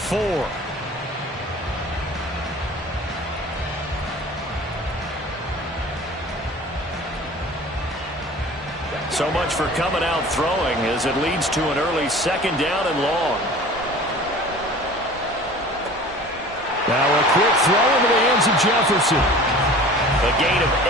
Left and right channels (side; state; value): both; normal; correlation 0.43